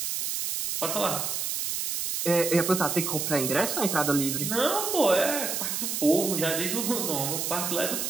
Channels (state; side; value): noise; right; hiss, 2 dB below the sound